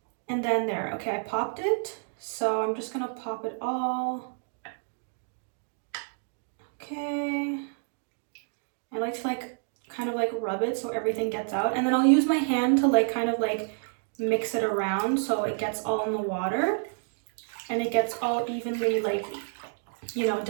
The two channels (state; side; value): silent; left; digital silence